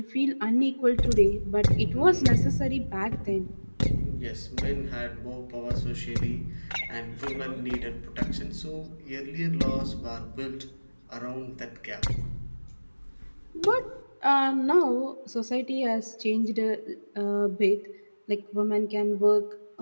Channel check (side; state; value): both; inverted; correlation -1.00